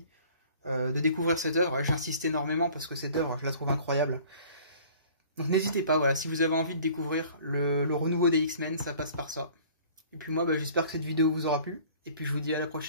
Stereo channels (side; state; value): both; inverted; correlation -0.50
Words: de découvrir cette œuvre. J'insiste énormément parce que cette œuvre, je la trouve incroyable. Donc n'hésitez pas, voilà, si vous avez envie de découvrir le renouveau des X-Men, ça passe par ça. Et puis moi, bah, j'espère que cette vidéo vous aura plu. Et puis je vous dis à la